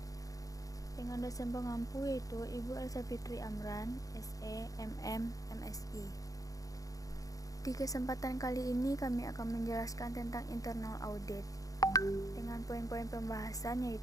Dengan dosen pengampu yaitu Ibu Elsa Fitri Amran, SE, MM, MSI. Di kesempatan kali ini kami akan menjelaskan tentang internal audit dengan poin-poin pembahasan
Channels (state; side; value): late; right; 0.17 ms